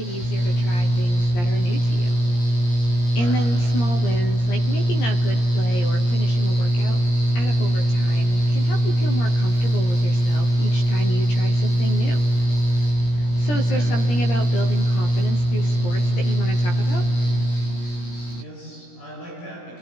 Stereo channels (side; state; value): right; late; 17 ms